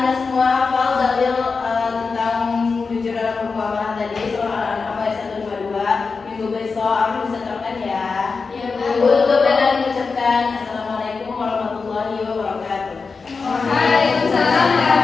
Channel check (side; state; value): right; quieter; 4.7 dB